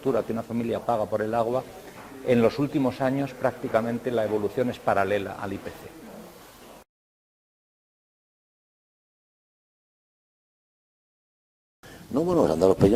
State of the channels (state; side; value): identical; both; correlation 1.00